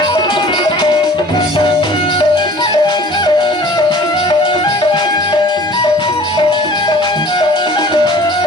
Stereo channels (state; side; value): normal; both; correlation 0.47